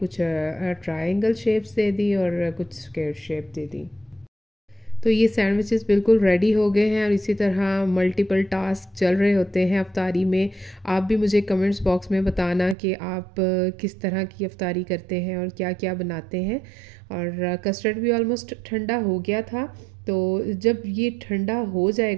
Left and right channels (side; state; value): left; drops out; at 12.8 s